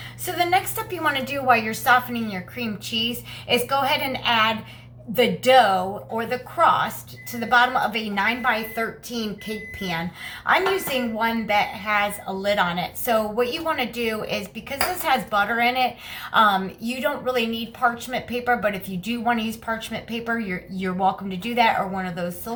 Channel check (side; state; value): both; identical; correlation 1.00